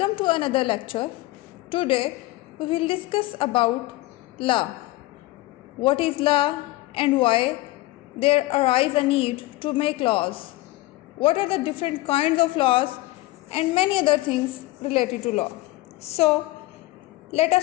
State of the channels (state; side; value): quieter; right; 18.8 dB